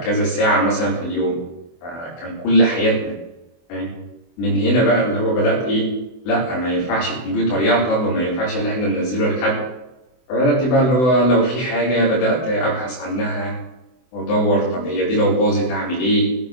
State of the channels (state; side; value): late; right; 24 ms